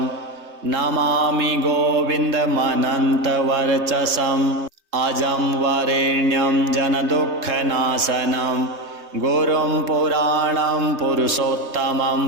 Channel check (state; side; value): late; left; 3.3 ms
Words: नमामि गोविन्दमनन्तवर्चसम् अजं वरेण्यं जनदुःखनाशनं गुरुं पुराणं पुरुषोत्तमं